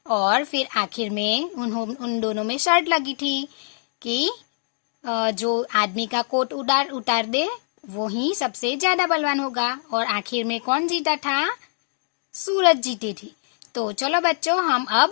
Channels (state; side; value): silent; right; digital silence